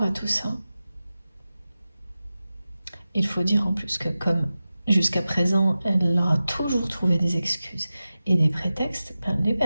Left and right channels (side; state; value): both; inverted; correlation -0.94